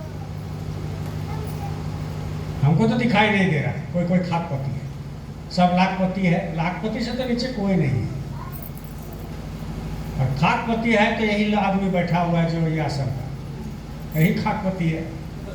हमको तो दिखाई नहीं दे रहा कोई कोई खाकपति है, सब लाखपति है। लाखपति से तो नीचे कोई नहीं है, और खाकपति है तो यही आदमी बैठा हुआ है जो ये आसन का, यही खाकपति है।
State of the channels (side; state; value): both; identical; correlation 1.00